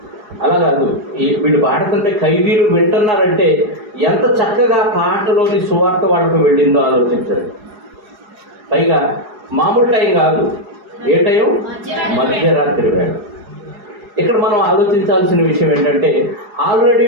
అలా కాదు, వీళ్ళు పాడుతుంటే ఖైదీలు వింటున్నారంటే ఎంత చక్కగా పాటలోని సువార్త వాళ్ళకు వెళ్ళిందో ఆలోచించారు. పైగా మామూలు టైం కాదు, ఏ టైం? మధ్యరాత్రి వేళ. ఇక్కడ మనం ఆలోచించాల్సిన విషయం ఏంటంటే ఆల్రెడీ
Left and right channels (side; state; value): left; late; 4.8 ms